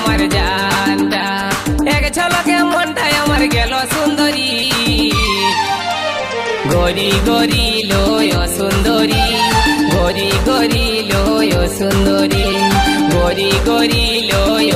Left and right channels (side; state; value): both; identical; correlation 1.00